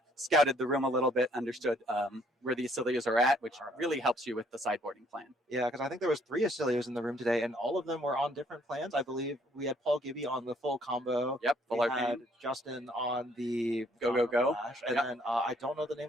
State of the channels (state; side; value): normal; both; correlation 0.65